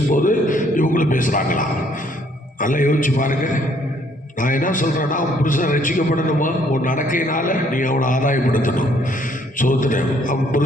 இவங்களும் பேசுகிறாங்களா? நல்லா யோசிச்சு பாருங்கள். நான் என்ன சொல்கிறேன்னா, அவன் புருஷன் ரட்சிக்கப்படணுமா, உன் நடக்கையினால் நீ அவனை ஆதாயப்படுத்தணும். சோத்திரம். அவன்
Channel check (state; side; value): normal; both; correlation 0.65